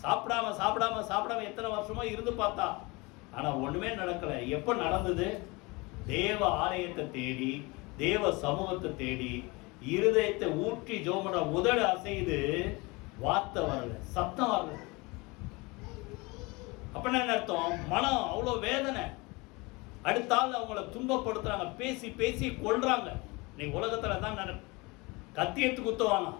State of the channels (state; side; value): quieter; right; 25.4 dB